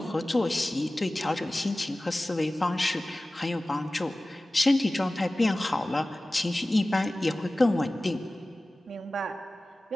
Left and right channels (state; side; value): normal; both; correlation 0.97